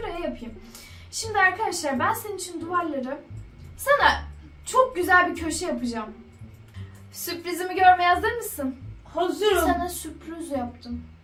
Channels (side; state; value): both; identical; correlation 1.00